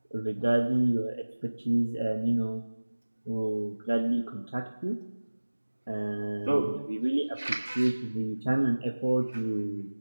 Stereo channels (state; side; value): inverted; both; correlation -1.00